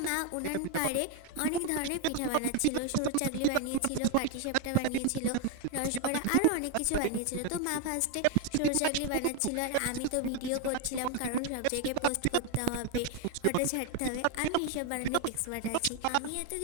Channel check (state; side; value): different; both; correlation 0.01